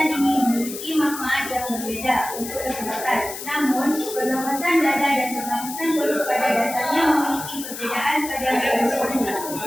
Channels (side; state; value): left; noise; hiss, 9 dB below the sound